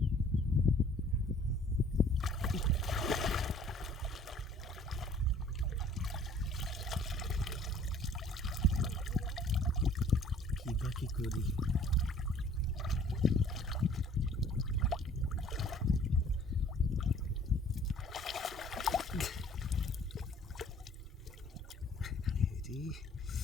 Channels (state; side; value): normal; both; correlation 0.54